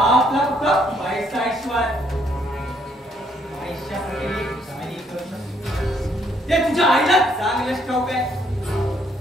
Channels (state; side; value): normal; both; correlation 0.69